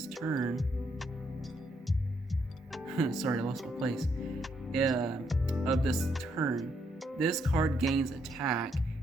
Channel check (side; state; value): both; normal; correlation 0.75